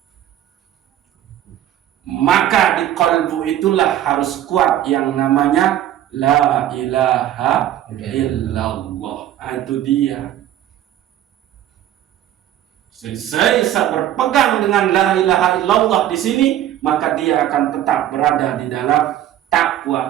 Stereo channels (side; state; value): left; quieter; 12.0 dB